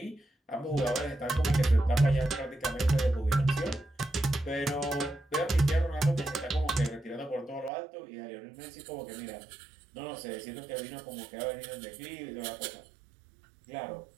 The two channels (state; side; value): drops out; left; at 7.7 s